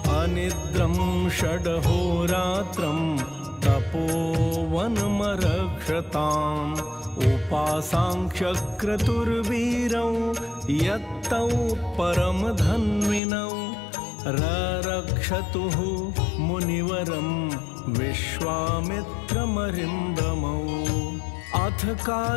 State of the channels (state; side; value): drops out; right; at 13.2 s